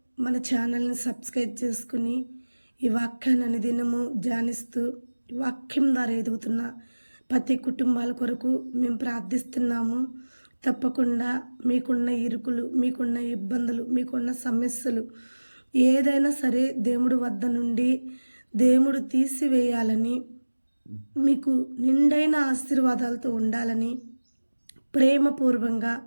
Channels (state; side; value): inverted; both; correlation -1.00